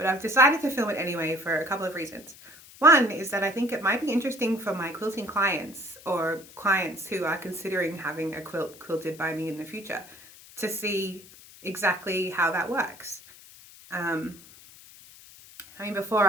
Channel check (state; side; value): noise; left; hiss, 21 dB below the sound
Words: I've decided to film it anyway for a couple of reasons. One is that I think it might be interesting for my quilting clients or clients who are considering having a quilt quilted by me in the future to see exactly how that works. I mean, before